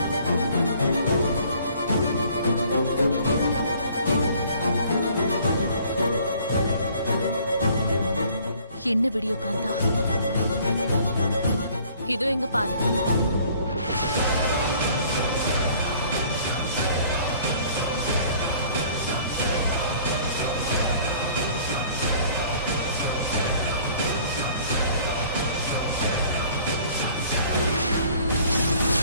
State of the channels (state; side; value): inverted; both; correlation -0.55